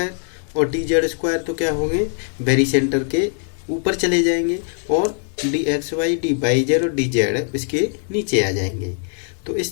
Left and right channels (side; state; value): right; silent; 65 dB below the other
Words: और डी जेड स्क्वायर तो क्या होंगे, वेरी सेंटर के ऊपर चले जाएंगे और D X Y D Y Z और डी जेड इसके नीचे आ जाएंगे। तो